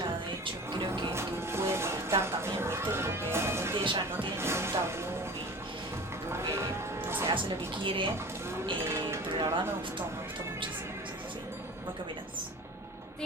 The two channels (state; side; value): normal; both; correlation 0.38